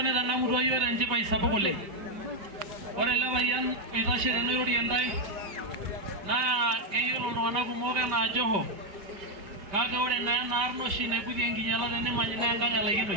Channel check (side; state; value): left; late; 5.1 ms